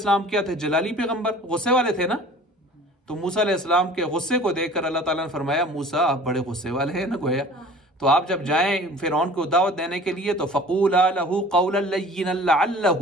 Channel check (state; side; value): normal; both; correlation 0.45